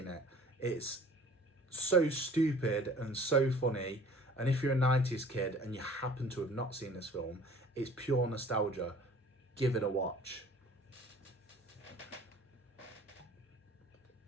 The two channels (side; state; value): both; normal; correlation 0.49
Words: it. It's so stupid and so funny, and if you're a 90s kid and you happen to have not seen this film, it's pure nostalgia. Give it a watch.